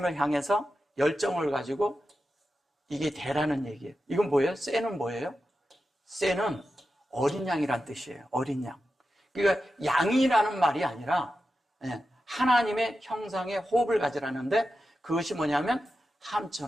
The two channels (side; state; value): both; normal; correlation 0.91